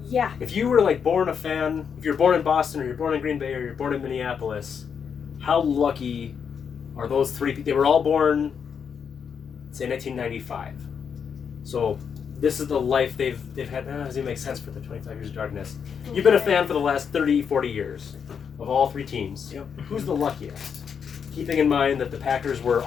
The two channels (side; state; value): right; quieter; 7.0 dB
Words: If you were like born a fan, if you're born in Boston or you're born in Green Bay or you're born in Minneapolis, how lucky are those three people? They were all born, say, 1995. So this is the life they've had. Doesn't make sense for the 25 years of darkness. You've been a fan for the last 30, 40 years of all three teams. Yep. Who's the luckiest? Keeping in mind that the Packers were